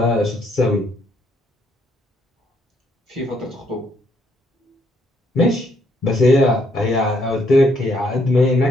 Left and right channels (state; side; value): normal; both; correlation 0.71